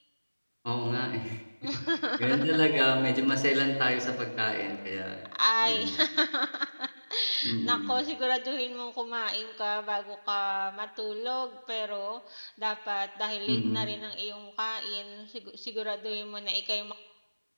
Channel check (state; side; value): inverted; both; correlation -1.00